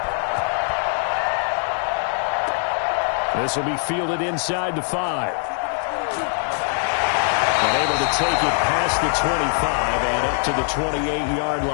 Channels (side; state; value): right; silent; 64 dB below the other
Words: This will be fielded inside the 5. And able to take it past the 25 and up to the 28-yard